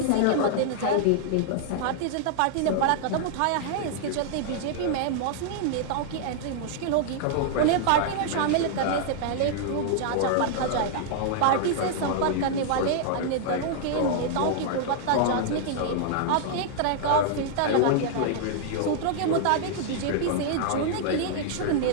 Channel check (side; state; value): both; different; correlation -0.01